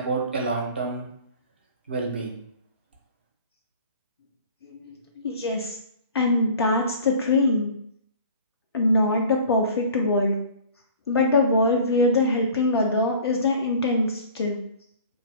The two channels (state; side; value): inverted; both; correlation -0.44